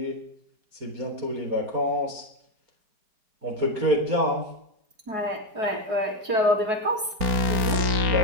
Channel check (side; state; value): left; late; 4.7 ms